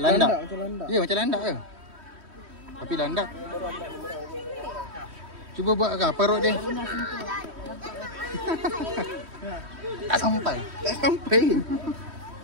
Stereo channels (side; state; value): left; late; 3.1 ms